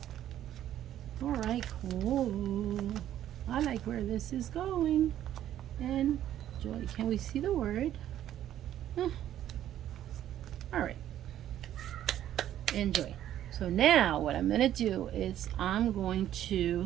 All right, cool. I like where this is going. Enjoy. Can we see the word? All right. Enjoy. So now what I'm going to do is I'm going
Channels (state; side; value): quieter; left; 11.7 dB